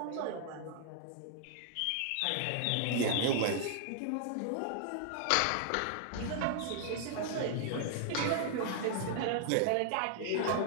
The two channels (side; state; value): both; different; correlation -0.01